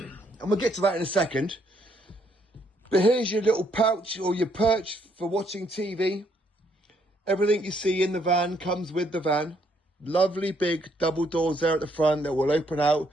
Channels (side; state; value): both; normal; correlation 0.71